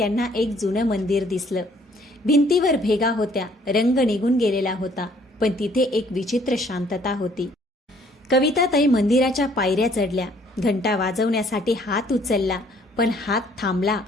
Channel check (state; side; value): normal; both; correlation 0.61